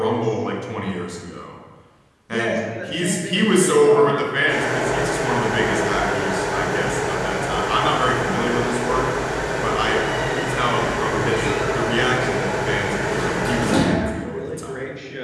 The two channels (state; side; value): identical; both; correlation 1.00